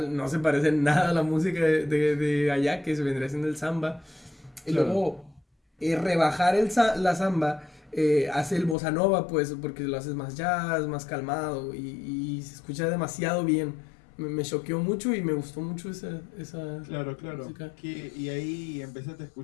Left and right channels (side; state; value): right; drops out; at 8.8 s